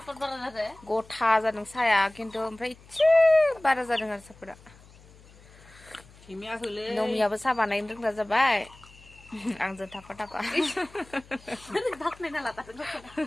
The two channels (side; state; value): left; noise; hum, 24 dB below the sound